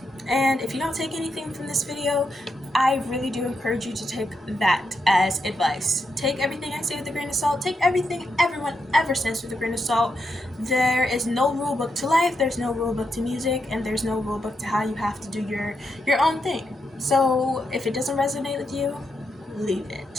And if you don't take anything from this video, I really do encourage you to take that as advice. Take everything I say with a grain of salt. Take everything everyone ever says with a grain of salt. There is no rule book to life, there's no rule book to music, and there's no rule book to how you have to do your own thing. So if it doesn't resonate with you, leave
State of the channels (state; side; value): normal; both; correlation 0.83